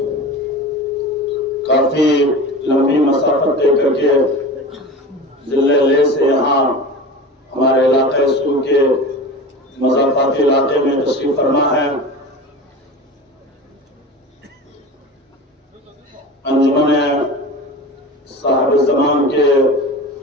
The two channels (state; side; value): normal; both; correlation 0.32